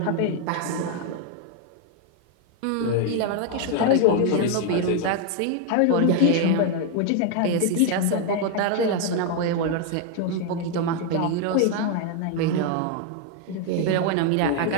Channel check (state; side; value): different; both; correlation 0.01